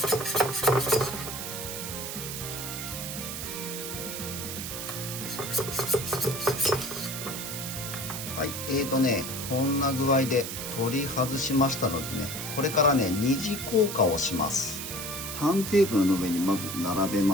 はい、こんな具合で取り外しましたのでね、これからね二次硬化をします。ターンテーブルの上にまず並べ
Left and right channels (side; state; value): right; noise; hiss, 6 dB below the sound